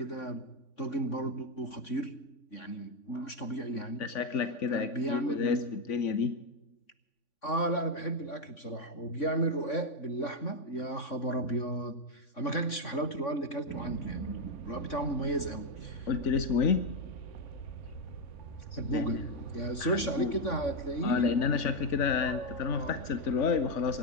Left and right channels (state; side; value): late; right; 3.6 ms